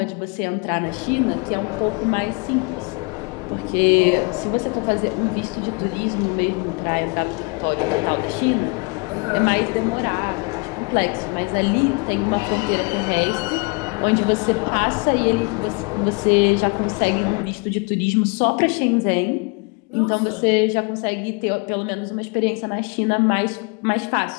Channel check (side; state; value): right; quieter; 31.3 dB